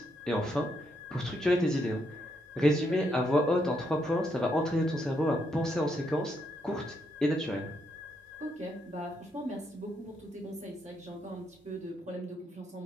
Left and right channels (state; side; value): normal; both; correlation 0.77